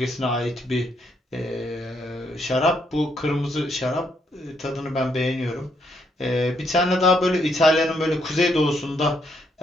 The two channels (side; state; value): both; normal; correlation 0.74